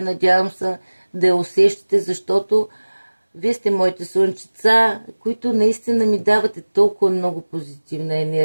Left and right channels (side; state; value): both; inverted; correlation -1.00